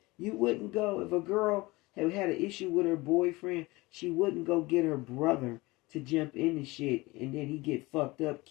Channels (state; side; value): quieter; right; 22.0 dB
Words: you wouldn't go if a girl had an issue with her boyfriend. She wouldn't go get her brother to jump in the shit, and then he get fucked up,